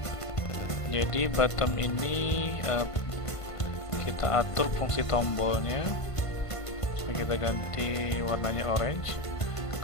Jadi bottom ini kita atur fungsi tombolnya. So, kita ganti warnanya orange.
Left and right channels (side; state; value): right; late; 1.5 ms